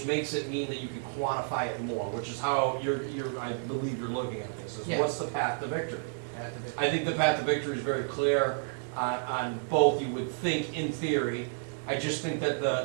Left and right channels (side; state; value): left; silent; 57 dB below the other